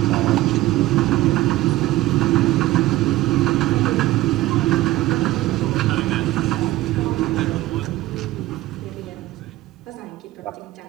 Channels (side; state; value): left; quieter; 16.4 dB